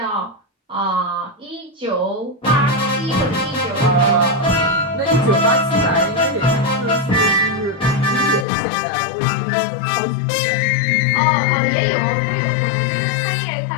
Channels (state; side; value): drops out; right; at 8.5 s